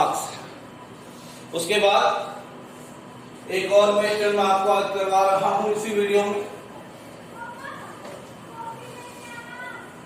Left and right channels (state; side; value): identical; both; correlation 1.00